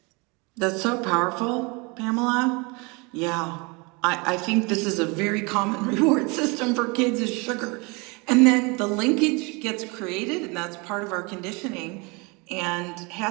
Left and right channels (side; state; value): left; quieter; 28.6 dB